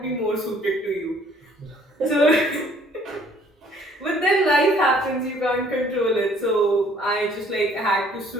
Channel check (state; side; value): normal; both; correlation 0.59